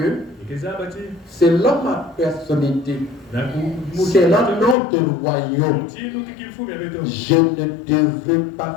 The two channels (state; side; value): drops out; right; at 4.8 s